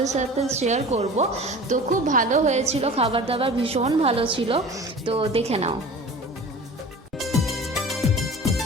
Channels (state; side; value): normal; both; correlation 0.40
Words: সাথে শেয়ার করব। তো খুব ভালো হয়েছিল, খাবার দাবার ভীষণ ভালো ছিল, তো দেখে নাও।